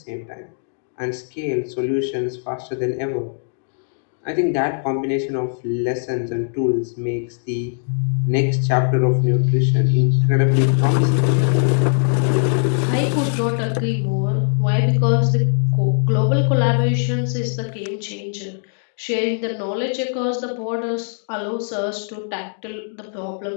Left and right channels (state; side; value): silent; right; digital silence